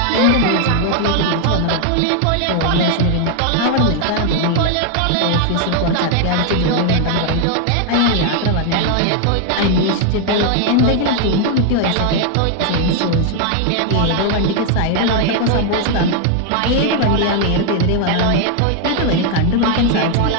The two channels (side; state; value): both; different; correlation 0.00